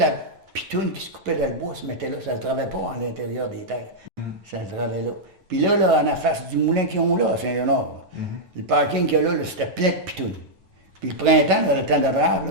pitoune qui se coupait dans le bois se mettait là, ça ne se travaillait pas à l'intérieur des terres. Ça se travaillait là. Puis là, en la face du moulin qu'ils ont là, à Saint-Léonard, le parking qu'il y a là, c'était plein de pitounes. Puis le printemps, dans le temps de Drave,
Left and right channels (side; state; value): left; late; 9.2 ms